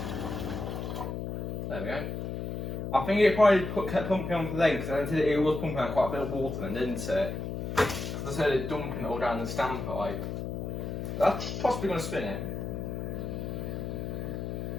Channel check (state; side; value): noise; left; hum, 4 dB below the sound